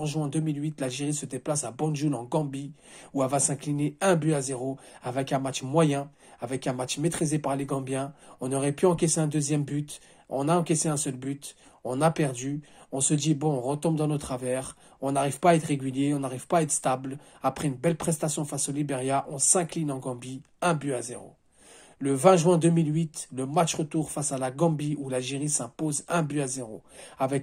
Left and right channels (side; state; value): both; identical; correlation 1.00